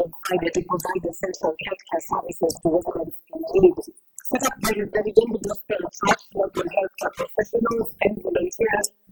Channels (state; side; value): identical; both; correlation 1.00